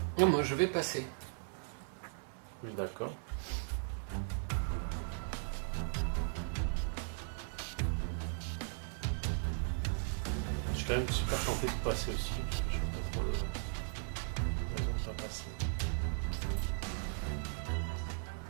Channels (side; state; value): left; silent; digital silence